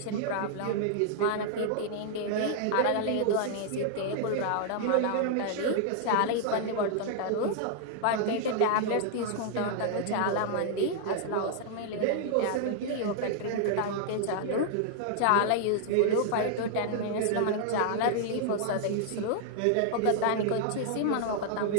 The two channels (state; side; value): different; both; correlation -0.01